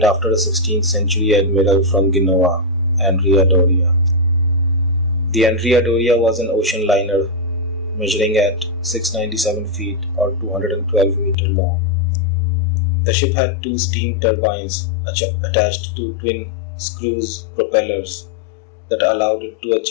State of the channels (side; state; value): right; drops out; at 11.4 s